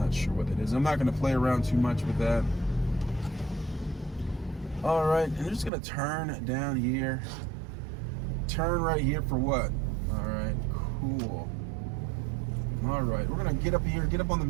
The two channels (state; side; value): drops out; left; at 5.7 s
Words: sure what that is. I'm not gonna play around too much with that. All right, and I'm just gonna turn down here. Turn right here for what? All right, cool. All right, we're gonna get up here, get up on the